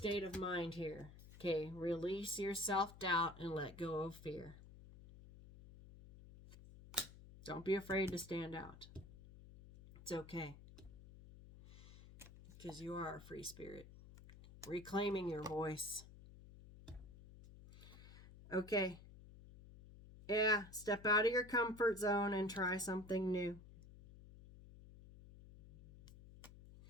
of mind here. Okay, release your self-doubt and let go of fear. Don't be afraid to stand out. It's okay. Because you are a free spirit. Reclaiming your voice. Okay. Yeah, step out of your comfort zone and try something new.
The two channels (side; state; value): left; noise; hum, 18 dB below the sound